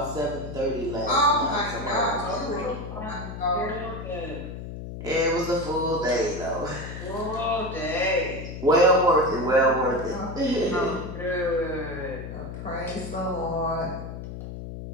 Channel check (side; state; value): left; noise; hum, 9 dB below the sound